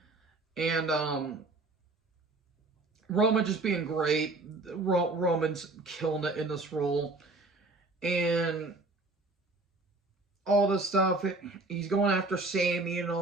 and Roman just being great. Roman's killing it in this role, and all this stuff. He's going after Sammy and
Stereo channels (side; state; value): left; quieter; 3.2 dB